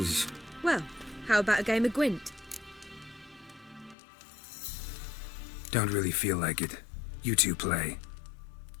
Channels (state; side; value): drops out; right; at 4.0 s